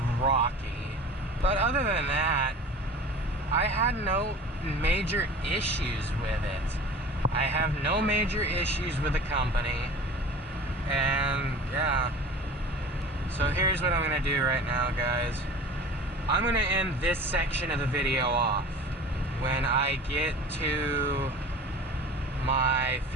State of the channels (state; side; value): normal; both; correlation 0.39